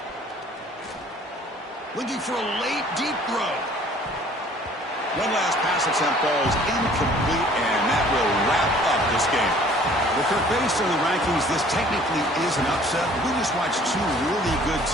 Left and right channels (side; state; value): both; normal; correlation 0.53